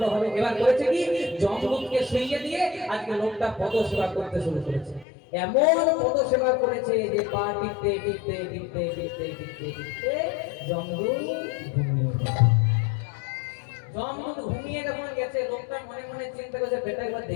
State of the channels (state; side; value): drops out; right; at 5.1 s